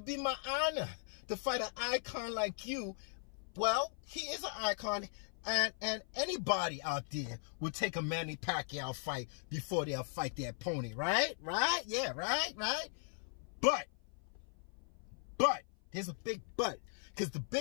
be my honor to fight an icon like you. Well, he is an icon, and anybody out there would take a Manny Pacquiao fight before they'll fight their opponent, right? Right? Yeah, right? But but. Here's a big but. Because the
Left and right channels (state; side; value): silent; right; 52 dB below the other